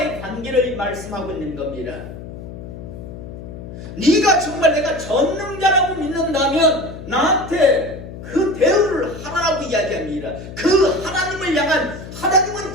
관계를 말씀하고 있는 겁니다. 네가 정말 내가 전능자라고 믿는다면 나한테 그 대우를 하라고 이야기합니다. 그 하나님을 향한 하나님은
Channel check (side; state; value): left; noise; hum, 12 dB below the sound